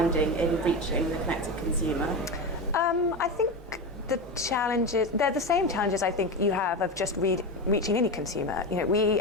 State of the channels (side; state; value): both; normal; correlation 0.19